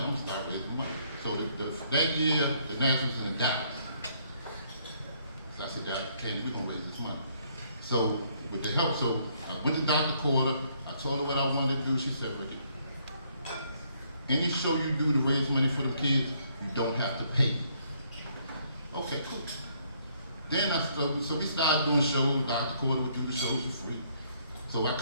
I'm gonna start raising money. So that year, the nationals was in Dallas. So I said, Candy, we're gonna raise this money. So with the help, so I went to Dr. Corder, I told her what I wanted to do. She said, Ricky, any show you do to raise money for the kids, you don't have to pay. Okay, cool. Then so we started doing shows. Dr. Corder would do the shows for free. So I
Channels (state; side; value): inverted; both; correlation -0.68